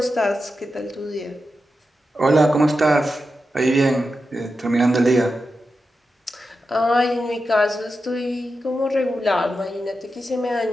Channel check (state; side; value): normal; both; correlation 0.90